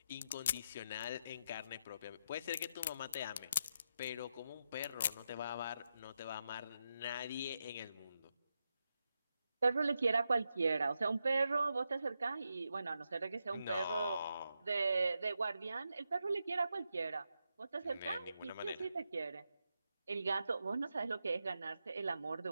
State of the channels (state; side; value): inverted; both; correlation -0.85